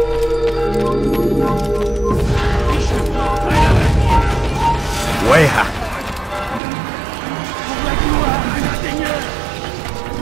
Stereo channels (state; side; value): drops out; left; at 6.6 s